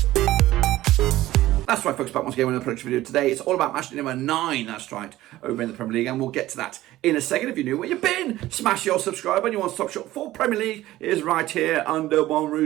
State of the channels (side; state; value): left; quieter; 15.8 dB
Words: That's right, folks, back once again with another production video today. It's all about match day number 9, that's right, over in the Premier League, and we'll get to that in a second. If you're new where you've been, smash your subscribe button. You want stop shop for Premier League is right here under one